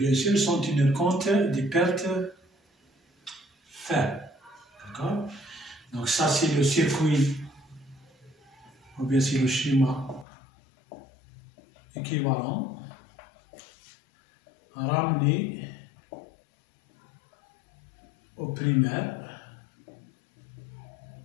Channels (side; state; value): right; drops out; at 10.2 s